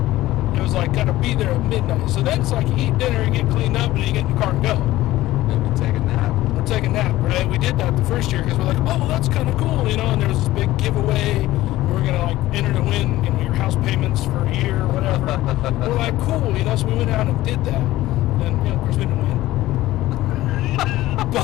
it was like, got to be there at midnight. So then it's like you eat dinner and get cleaned up and then you get in the car and go. Maybe take a nap. Or take a nap, right? We did that the first year because we're like, oh, that's kind of cool, and there was this big giveaway. We're going to enter to win, your house payments for a year or whatever. We're like, cool, so we went out and did that. And, of course, we didn't win.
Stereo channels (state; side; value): quieter; right; 16.2 dB